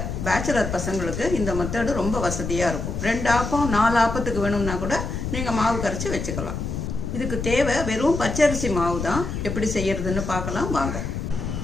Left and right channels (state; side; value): noise; left; rumble, 4 dB below the sound